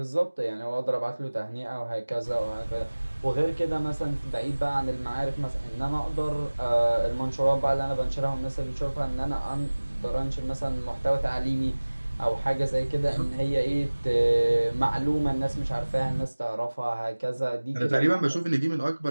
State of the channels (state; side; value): inverted; both; correlation -1.00